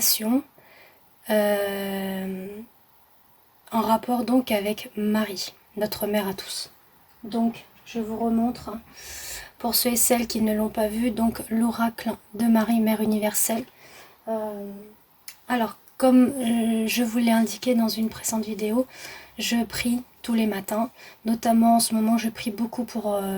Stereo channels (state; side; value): identical; both; correlation 1.00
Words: en rapport donc avec Marie, notre mère à tous. Donc je vous remontre pour ceux et celles qui ne l'ont pas vu, donc l'oracle de Marie, Mère universelle. Alors comme je vous l'ai indiqué dans une précédente vidéo, je prie tous les matins, notamment en ce moment je prie beaucoup pour